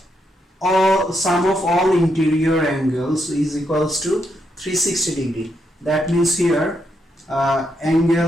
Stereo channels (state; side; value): normal; both; correlation 0.79